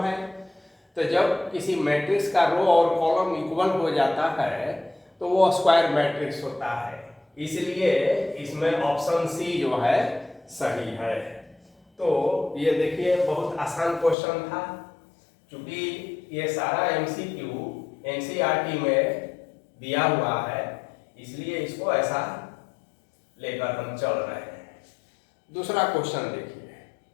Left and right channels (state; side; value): drops out; right; at 14.2 s